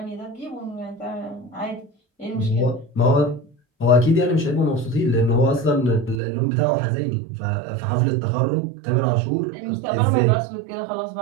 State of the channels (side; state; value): left; drops out; at 6.2 s